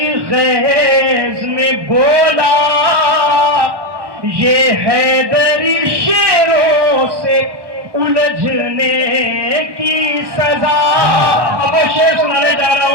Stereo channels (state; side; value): late; left; 1.2 ms